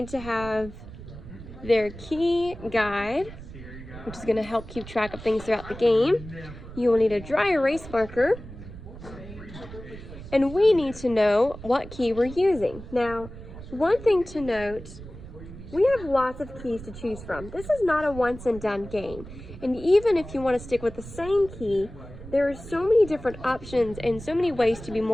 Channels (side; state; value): right; noise; rumble, 14 dB below the sound